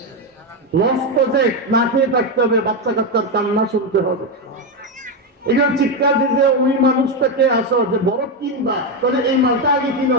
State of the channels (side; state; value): both; normal; correlation 0.08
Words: লস প্রজেক্ট, না খেয়ে থাকতে হবে, বাচ্চা কাচ্চার কান্না শুনতে হবে। এগুলো চিৎকার দিতে ওই মানুষটাকে আসো যে বড় কিনবা, তাহলে এই মালটা আগে কিনো,